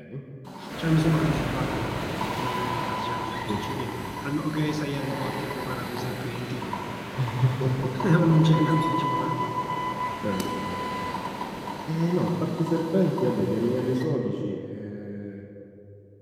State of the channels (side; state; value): both; identical; correlation 1.00